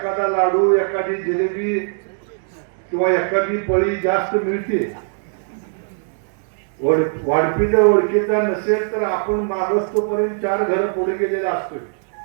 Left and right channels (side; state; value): left; silent; digital silence